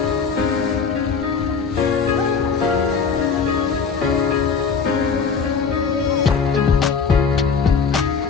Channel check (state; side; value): quieter; right; 5.7 dB